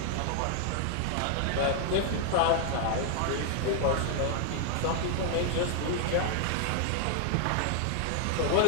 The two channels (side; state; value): both; different; correlation 0.00